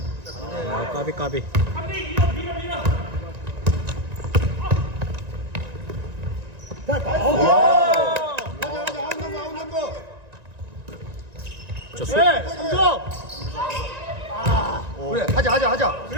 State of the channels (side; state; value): left; late; 1.9 ms